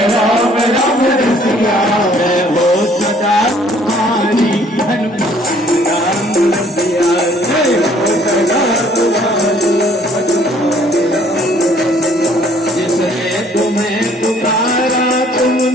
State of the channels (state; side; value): normal; both; correlation 0.59